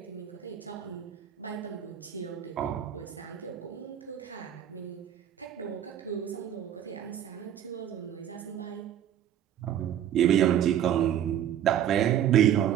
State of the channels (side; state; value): left; quieter; 10.4 dB